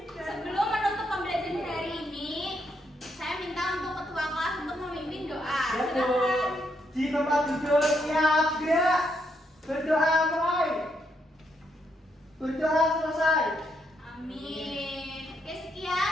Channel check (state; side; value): normal; both; correlation 0.77